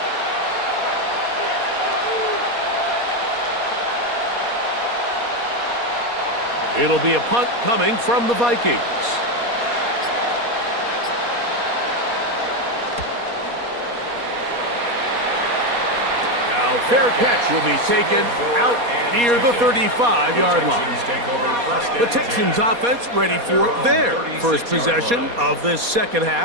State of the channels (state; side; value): late; left; 4.2 ms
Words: It'll be a punt coming from the Vikings. Now fair catch will be taken out near the 35-yard line. The Texans offense ready for their first possession of this second